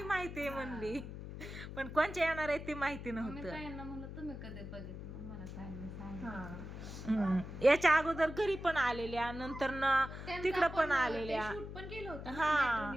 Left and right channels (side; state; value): left; noise; hum, 9 dB below the sound